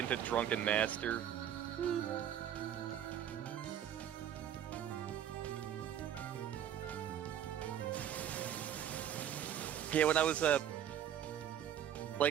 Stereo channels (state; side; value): quieter; left; 10.1 dB